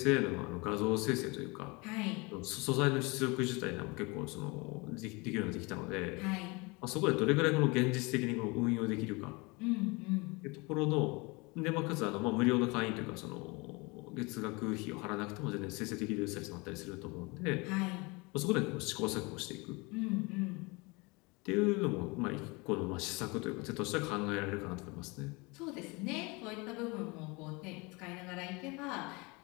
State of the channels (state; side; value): quieter; right; 26.8 dB